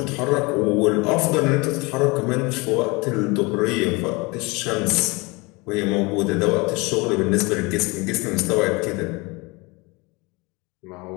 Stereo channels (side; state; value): right; quieter; 26.0 dB